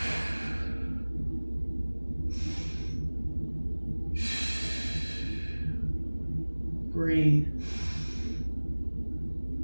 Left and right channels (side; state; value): both; inverted; correlation -1.00